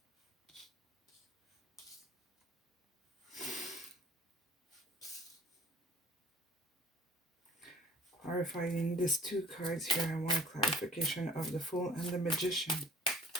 clarifying these two cards here. I want clarification of the Fool and the Magician.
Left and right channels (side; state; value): both; normal; correlation 0.49